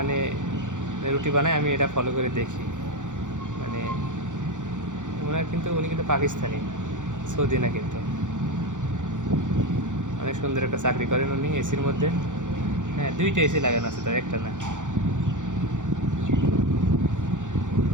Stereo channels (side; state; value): left; late; 0.86 ms